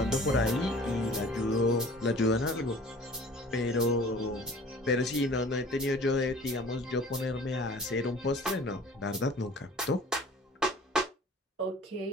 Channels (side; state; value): both; normal; correlation 0.47